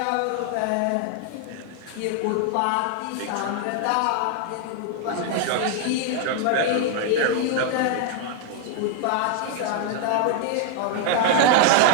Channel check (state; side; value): different; both; correlation 0.00